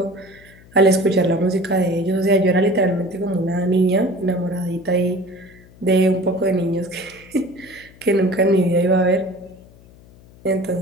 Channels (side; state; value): left; noise; hum, 24 dB below the sound